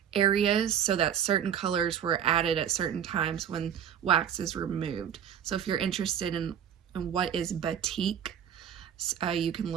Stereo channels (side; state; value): left; quieter; 8.9 dB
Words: areas so that certain colors were added at certain times when wax is removed. So if you're interested in what is batik, you can